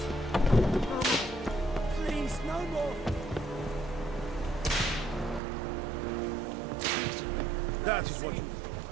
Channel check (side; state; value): left; drops out; at 5.4 s